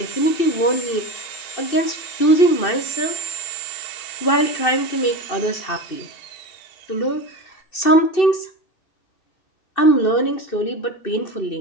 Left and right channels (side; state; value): right; late; 2.6 ms